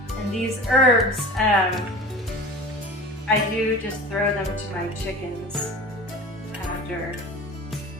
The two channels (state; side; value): normal; both; correlation 0.37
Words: And these herbs, I do just throw them to my chickens after